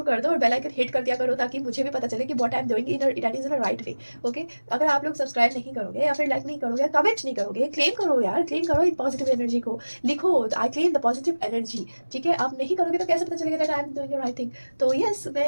कर दो और बेल आइकन हिट कर दिया करो, ताकि मुझे भी पता चले कि what I am doing it is in a right way. Okay, अगर आप लोग सब्सक्राइब नहीं करोगे या फिर लाइक नहीं करोगे, कमेंट नहीं करोगे, क्लेम करो यार, क्लेम करो इन पॉजिटिव एनर्जी को, लिखो I claim the positive energy, ठीक है। आप नहीं करोगे तो कैसे पता चलेगा that I am doing the right thing. तो यस,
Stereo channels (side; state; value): both; inverted; correlation -1.00